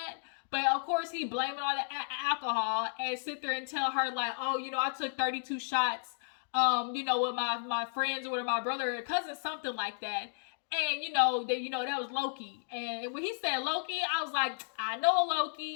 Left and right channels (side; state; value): right; silent; digital silence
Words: But of course he blaming all the alcohol and sit there and tell her oh, I took 32 shots, with my friends or with my brother or cousin, something like that. And that was Lokey. And when he said Lokey, I was like, I know